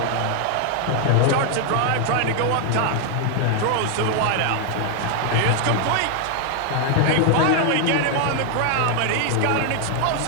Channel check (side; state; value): both; different; correlation 0.00